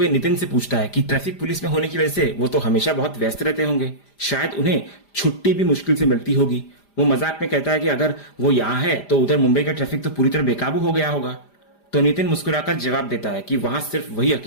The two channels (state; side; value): late; right; 5.0 ms